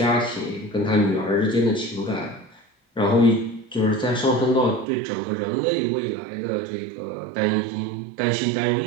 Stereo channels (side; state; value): left; drops out; at 4.9 s